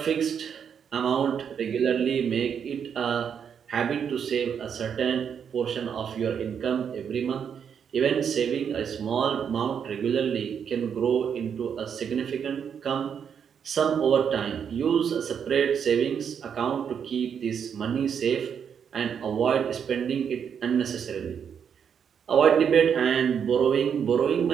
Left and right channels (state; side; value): quieter; left; 7.6 dB